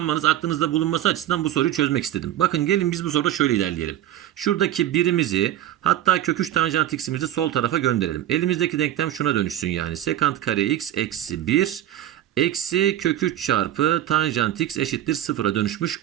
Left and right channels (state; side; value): quieter; left; 12.5 dB